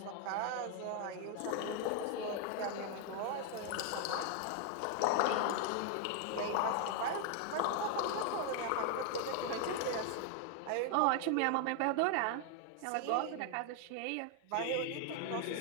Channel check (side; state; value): both; different; correlation 0.00